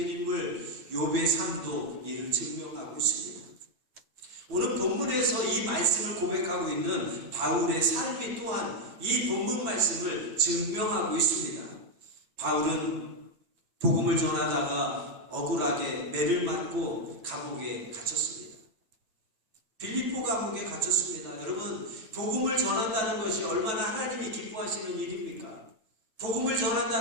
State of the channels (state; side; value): late; left; 9.2 ms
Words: 인물 욥의 삶도 이를 증명하고 있습니다. 오늘 본문에서 이 말씀을 고백하고 있는 바울의 삶이 또한 이 본문 말씀을 증명하고 있습니다. 바울은 복음을 전하다가 억울하게 매를 맞고 감옥에 갇혔습니다. 빌립보 감옥에 갇혔습니다. 여러분, 복음을 전한다는 것이 얼마나 하나님이 기뻐하시는 일입니까? 복음을